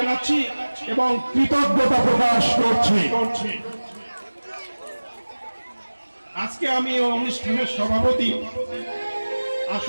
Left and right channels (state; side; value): inverted; both; correlation -1.00